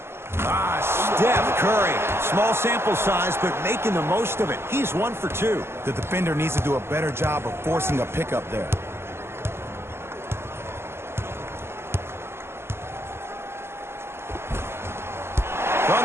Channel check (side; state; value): left; late; 0.12 ms